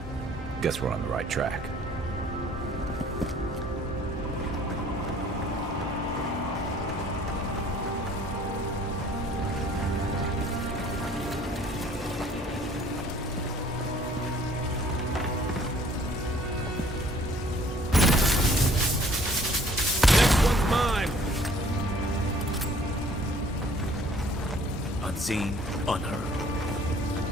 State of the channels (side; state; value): both; normal; correlation 0.56